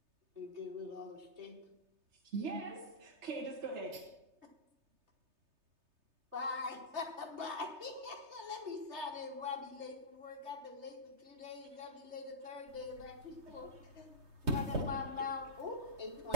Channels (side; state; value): left; late; 3.3 ms